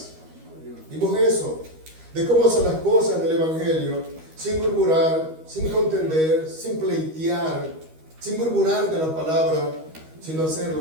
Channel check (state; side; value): late; left; 13 ms